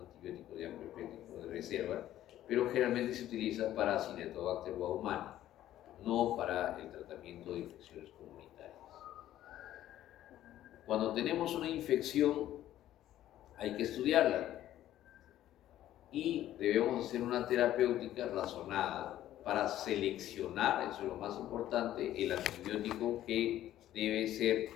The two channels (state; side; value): quieter; right; 12.9 dB